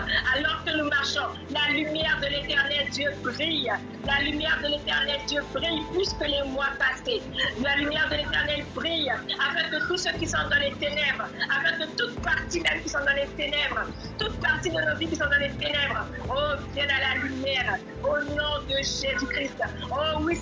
alors que nous marchons, la lumière de l'Éternel Dieu brille. La lumière de l'Éternel Dieu brille plus que les mois passés. La lumière de l'Éternel brille afin que tous ceux qui sont dans les ténèbres, afin que toute partie même qui sont dans les ténèbres, toute partie de nos vies qui sont dans les ténèbres, viennent à la lumière au nom de Jésus-Christ. Oui,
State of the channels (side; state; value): both; identical; correlation 1.00